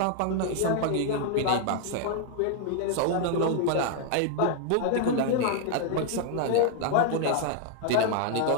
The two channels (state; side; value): different; both; correlation 0.00